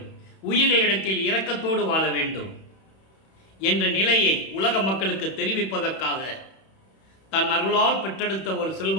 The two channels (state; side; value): late; right; 31 ms